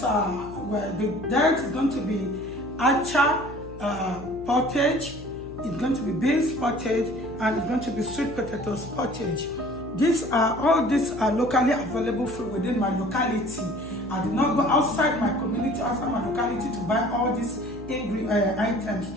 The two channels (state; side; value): noise; left; hum, 15 dB below the sound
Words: where the diet is going to be acha pottage, it's going to be beans pottage, and it's going to be sweet potatoes pottage. All these are locally available food within my locality. I did not go outside my community, outside my locality to buy all these items.